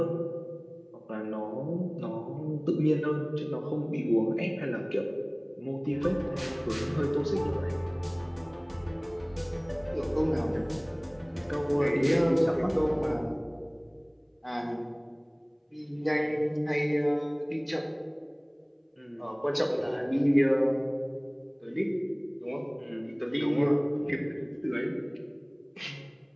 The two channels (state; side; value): identical; both; correlation 1.00